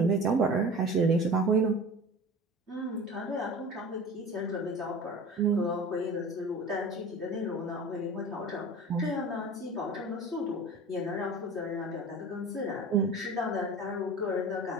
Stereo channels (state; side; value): normal; both; correlation 0.37